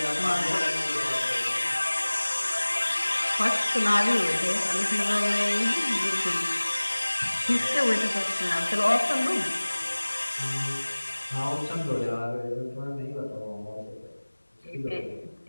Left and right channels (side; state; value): both; inverted; correlation -1.00